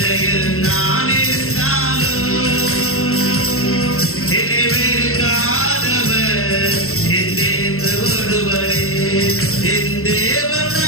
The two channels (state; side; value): late; right; 0.63 ms